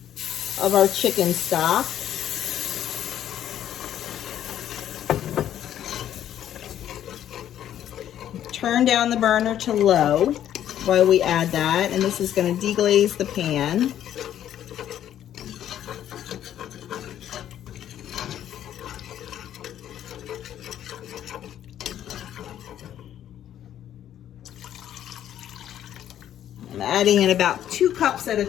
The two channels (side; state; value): right; quieter; 11.0 dB